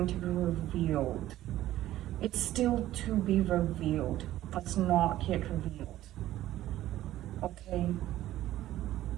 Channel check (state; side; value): quieter; left; 14.2 dB